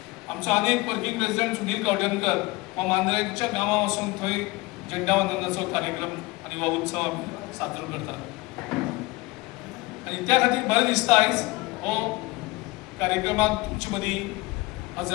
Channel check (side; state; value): right; quieter; 22.4 dB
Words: आमचो आनीक वर्किंग प्रेसिडेंट सुनील गावडेकर हो मांद्रेच्या गांवां वचून थंय झेंडावंदनाचो कार्यक्रम आनी हो उत्सव आमी साजरो करतात। आनी त्या खातीर बरें दिसता आयज हो कार्यक्रमाक तुमचे मदीं